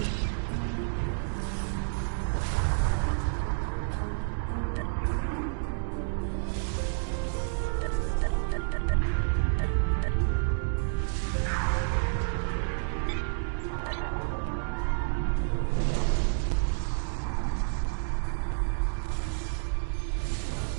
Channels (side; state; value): left; silent; digital silence